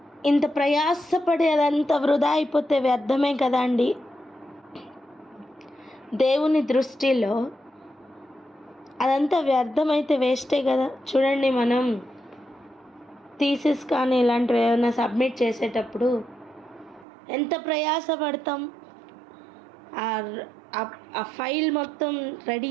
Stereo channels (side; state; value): left; drops out; at 17.1 s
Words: ఇంత ప్రయాసపడి అదంతా వృధా అయిపోతే వ్యర్థమే కదా అండి. దేవుని దృష్టిలో అదంతా వ్యర్థమైతే వేస్టే కదా. చూడండి, మనం థీసిస్ కానీ ఇలాంటివి ఏమైనా సబ్మిట్ చేసేటప్పుడు ఎంత ప్రయాసపడతాం. ఆ ఫైల్ మొత్తం రెడీ